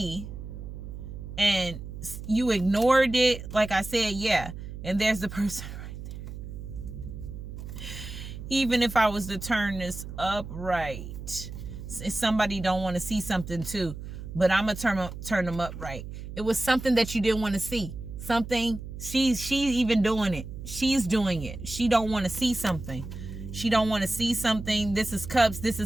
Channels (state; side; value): noise; right; hum, 10 dB below the sound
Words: and you ignored it. Like I said, yeah. And there's the person right there. Even if I was to turn this upright, somebody don't want to see something too, but I'm gonna turn them upright. It was something that you didn't want to see. Something, she's even doing it. She's doing it. She don't want to see something. She don't want to see something. This is cups. This